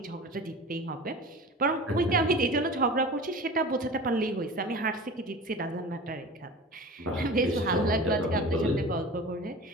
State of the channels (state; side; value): normal; both; correlation 0.36